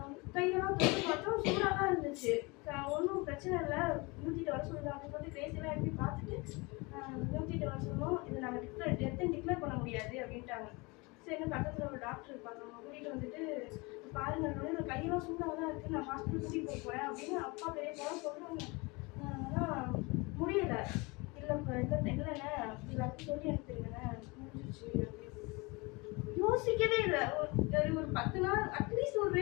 கையெல்லாம் தொட்டு பார்த்தோம், சூடாக தான் இருந்துச்சு. ஒன்றும் பிரச்சனை இல்லை, 108 வர சொல்லுங்க அப்படின்னு சொல்லிட்டு கிரேசியெல்லாம் எப்படி பார்த்துட்டு 108 வர சொன்னோம். இது நாங்கள் டெத்துன்னு பண்ண முடியாது அப்படின்ட்டாங்க. சரி பக்கத்தில் ஒரு டாக்டர் இருப்பாங்க, அவங்க கூட்டிகிட்டு வந்துட்டு பாருங்க என்னோட கையெல்லாம் சூடாக தான் இருக்குது, நான் ஹாஸ்பிட்டல் கூட்டிகிட்டு போகிறேன் அப்படின்னு அப்பா பெரிய போல சொல்கிறாங்க. ஆனால் முடியலை. இல்லைண்ணே எல்லாத்தையும் சொல்லி எடுத்துருங்கண்ணே முடிஞ்சிச்சு அப்படின்னு யோசிக்கவே இல்லை. ஒரு 10 நாள் அட்லீஸ்ட் ஒரு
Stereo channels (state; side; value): quieter; right; 26.3 dB